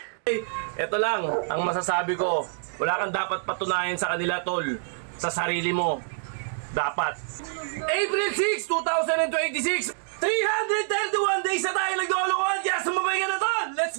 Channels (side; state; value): left; silent; digital silence